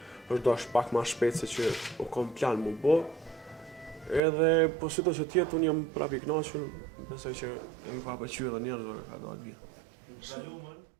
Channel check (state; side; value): drops out; left; at 4.2 s